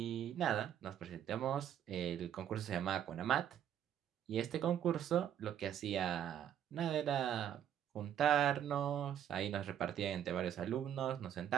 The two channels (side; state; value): left; quieter; 9.9 dB